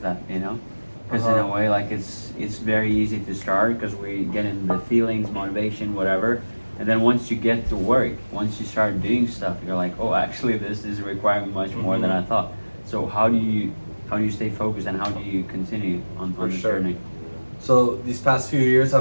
that? Because in a way, it's very easy to start because we get in the feelings, motivation, whatever. And then once you get to work, once you start doing stuff, you're like, oh, actually, this is requiring much more than I thought. So how do you stay focused, and how do you continue on the journey? So these past few years,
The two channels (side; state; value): both; inverted; correlation -1.00